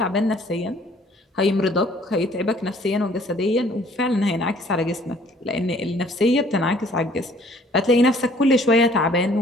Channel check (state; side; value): normal; both; correlation 0.57